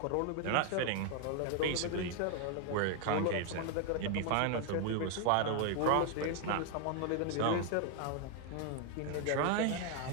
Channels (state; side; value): different; both; correlation 0.01